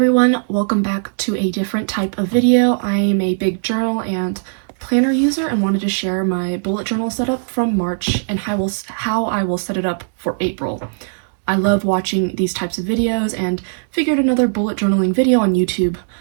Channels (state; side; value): silent; left; 67 dB below the other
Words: everyone, welcome back to a different type of video. I am a big journal and planner user and wanted to share my bullet journal setup from March and how I will set it up for April. I love watching these types of videos and figured another bullet journaling video on YouTube